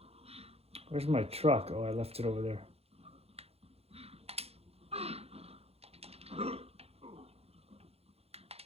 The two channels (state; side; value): late; left; 0.29 ms